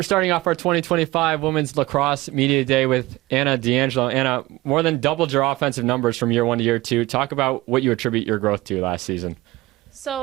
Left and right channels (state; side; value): quieter; left; 19.3 dB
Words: starting off our 2025 Women's Lacrosse Media Day with Anna D'Angelo. Anna, more than doubled your offensive numbers from year one to year two. Talk about what you attribute your growth to last season.